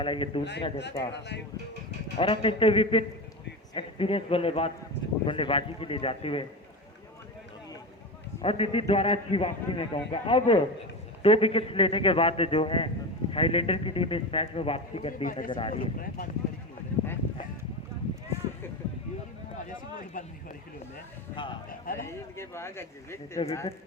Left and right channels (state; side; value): normal; both; correlation 0.23